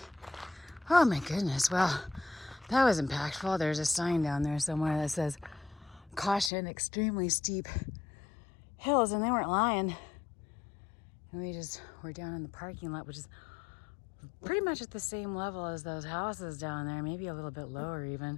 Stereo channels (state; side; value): drops out; right; at 6.5 s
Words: Oh my goodness. Well, that was impactful. There's a sign down there somewhere that says caution, extremely steep hills, and they weren't lying. And we just were down in the parking lot, which is pretty much at the same level as those houses down there, maybe a little bit lower